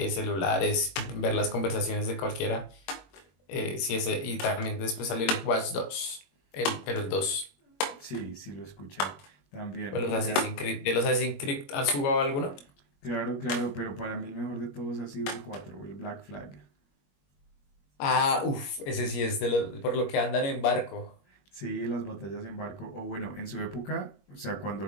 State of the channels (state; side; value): late; right; 21 ms